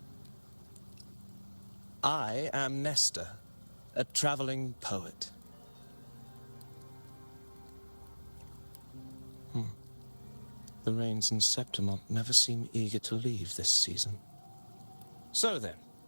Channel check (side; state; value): both; inverted; correlation -1.00